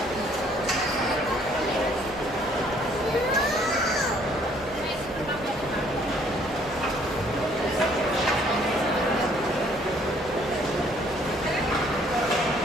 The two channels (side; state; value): right; noise; rumble, 19 dB below the sound